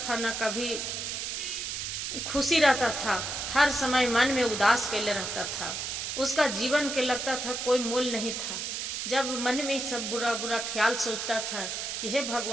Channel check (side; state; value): right; noise; hiss, 3 dB below the sound